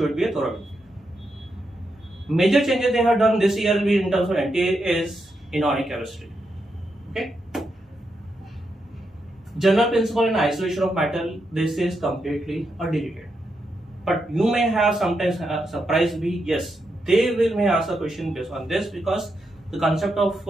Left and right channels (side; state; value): both; normal; correlation 0.83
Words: be a thorough. Major changes they have done this year will be in terms of NTA is inorganic chemistry. Okay. General principle in isolation of matter, this is completely deleted. But you may have sometimes surprise be yes, they may ask a question based on this, because the concept